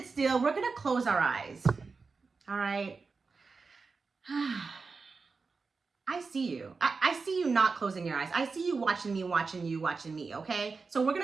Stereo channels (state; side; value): quieter; left; 4.5 dB